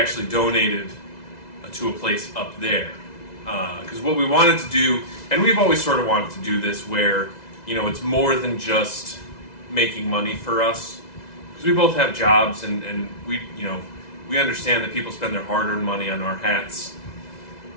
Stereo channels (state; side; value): late; right; 2.0 ms